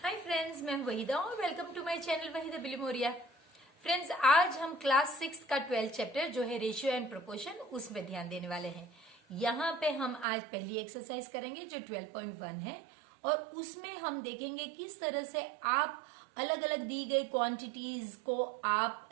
फ्रेंड्स, मैं वहीदा और welcome to my channel Waheeda Bilimoria. Friends, आज हम क्लास 6 का 12th चैप्टर जो है रेशियो एंड प्रोपोर्शन उसमें ध्यान देने वाले हैं। यहाँ पे हम आज पहली एक्सरसाइज करेंगे जो 12.1 है और उसमें हम देखेंगे किस तरह से आप अलग अलग दी गई क्वांटिटीज को आप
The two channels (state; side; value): drops out; left; at 10.2 s